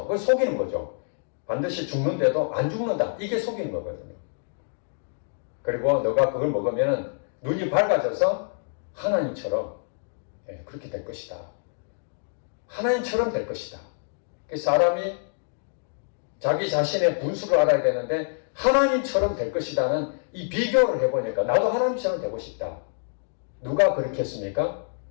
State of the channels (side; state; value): right; silent; digital silence